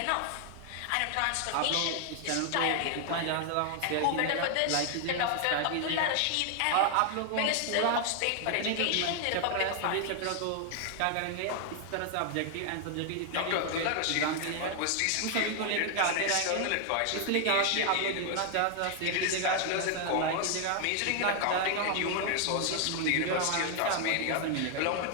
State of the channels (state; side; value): different; both; correlation 0.00